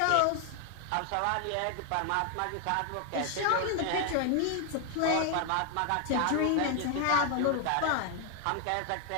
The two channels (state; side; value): different; both; correlation 0.00